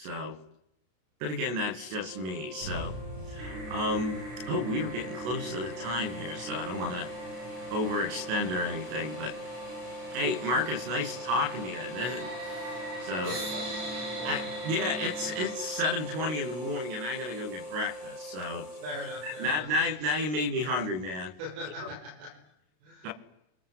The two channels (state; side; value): late; left; 33 ms